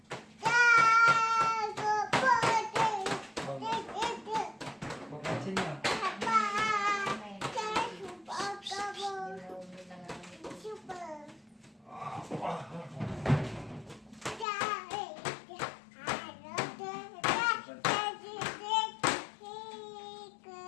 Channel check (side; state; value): right; drops out; at 14.5 s